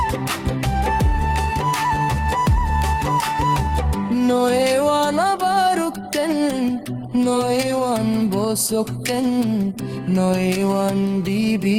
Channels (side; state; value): both; identical; correlation 1.00